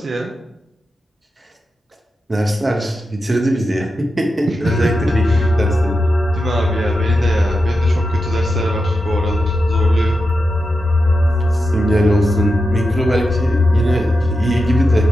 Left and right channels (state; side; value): normal; both; correlation 0.89